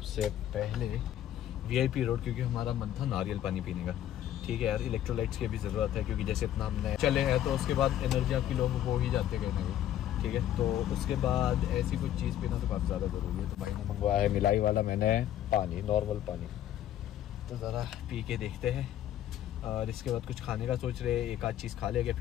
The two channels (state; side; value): quieter; right; 11.6 dB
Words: पहले VIP रोड, क्योंकि हमारा मन था नारियल पानी पीने का। ठीक है यार, इलेक्ट्रोलाइट्स की भी जरूरत है, क्योंकि जैसे इतना हमने चले हैं तो उसके बाद एनर्जी आपकी लोग हो ही जाते गए नहीं। ठीक है, तो उसके बाद ऐसी कुछ चीज़ पीना तो काफ़ी ज़्यादा ज़रूरी है। तो भाई ने मंगवाया है मिलाई वाला, मैंने पानी, नॉर्मल पानी। तो ज़रा पी के देखते हैं, और इसके बाद कुछ खाने का सोच रहे, एक आध चीज़ खा लेंगे